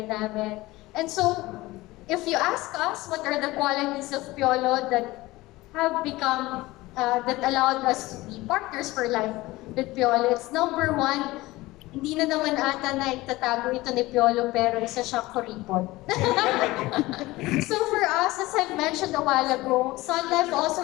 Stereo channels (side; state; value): right; quieter; 19.4 dB